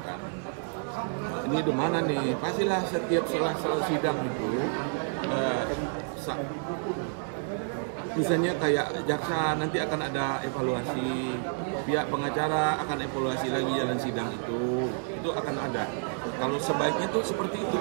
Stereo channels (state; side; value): silent; left; 58 dB below the other